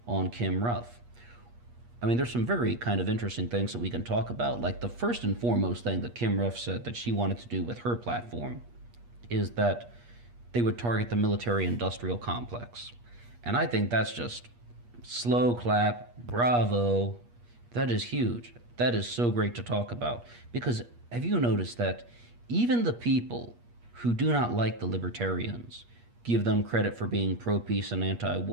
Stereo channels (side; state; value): left; late; 8.4 ms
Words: on Kim Ruff. I mean, there's some very kind of interesting things that we can talk about. Like the first and foremost thing that Kim Ruff said that she wanted to do with her platform is that they would target the military industrial complex. And I think that's just slow clap, bravo. That is huge. That is so great to talk about. Because have you noticed that even the people who do not like the libertarians give them credit for being pro-peace and